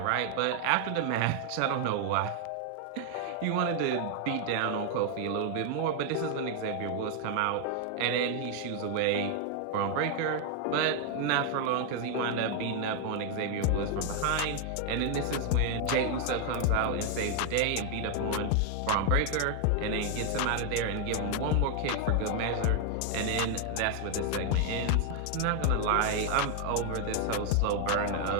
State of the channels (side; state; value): both; different; correlation 0.00